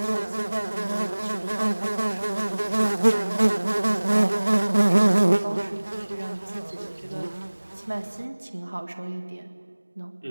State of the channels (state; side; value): inverted; both; correlation -1.00